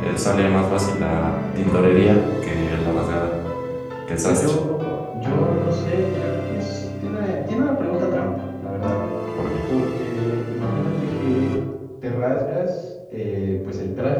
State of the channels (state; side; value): identical; both; correlation 1.00